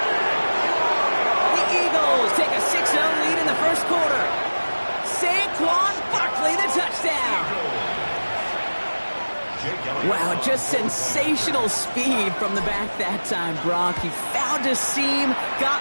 The Eagles take a 6-0 lead in the first quarter. Saquon Barkley, the touchdown. Wow, just sensational speed from the back that time, Brock. He found a seam,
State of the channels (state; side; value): inverted; both; correlation -1.00